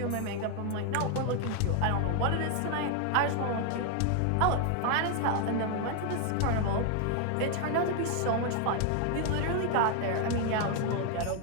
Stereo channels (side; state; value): both; different; correlation 0.00